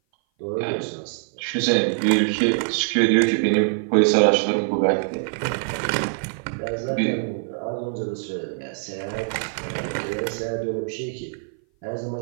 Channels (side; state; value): left; silent; 57 dB below the other